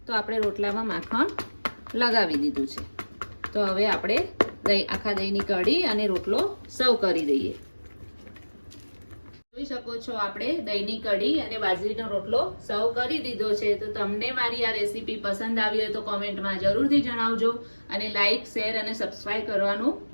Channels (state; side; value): inverted; both; correlation -1.00